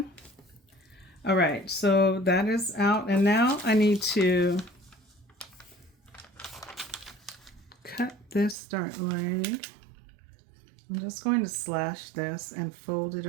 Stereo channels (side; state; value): left; drops out; at 8.6 s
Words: All right, so that is out, and now I need to cut this dart leg. I'm just going to slash this and fold it